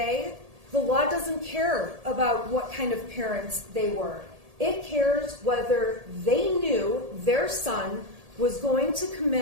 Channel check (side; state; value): left; late; 1.7 ms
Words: the law doesn't care about what kind of parents they were. It cares whether they knew their son was going to